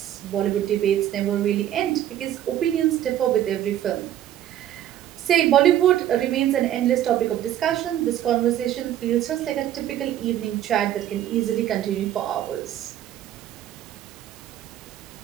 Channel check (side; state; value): left; quieter; 11.7 dB